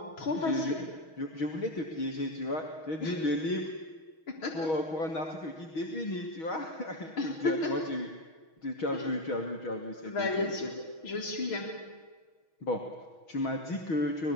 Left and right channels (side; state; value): right; late; 6.3 ms